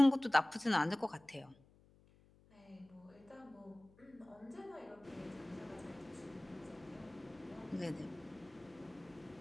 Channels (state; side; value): noise; left; hum, 27 dB below the sound